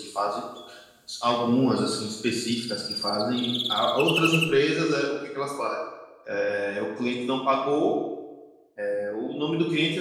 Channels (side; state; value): both; identical; correlation 1.00